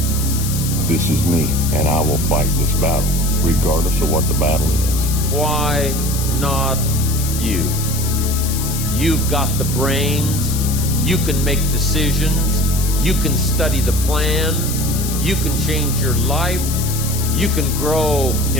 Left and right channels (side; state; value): left; noise; hiss, 6 dB below the sound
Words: This is me, and I will fight this battle, regardless of what the battle is. Why not you? You've got the brains, you can make decisions, you can study the plan, you can change your life, you can grow